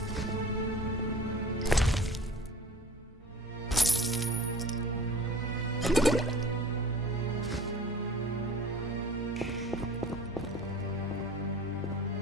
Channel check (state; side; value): normal; both; correlation 0.43